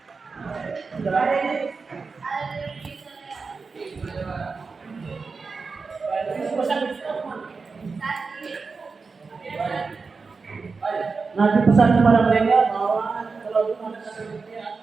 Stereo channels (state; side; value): quieter; left; 4.6 dB